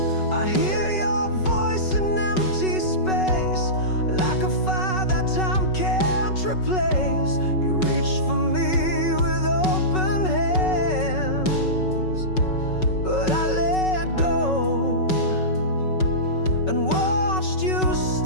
Replace. You reached for me with open hands, but I let go and watched you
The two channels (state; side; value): late; right; 5.3 ms